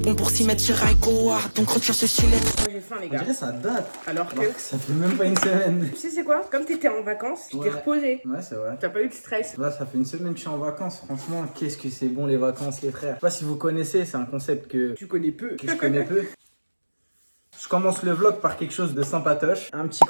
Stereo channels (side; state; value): both; inverted; correlation -1.00